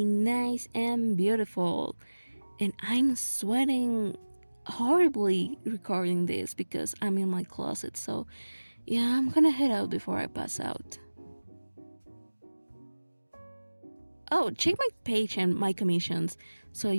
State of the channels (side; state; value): both; inverted; correlation -1.00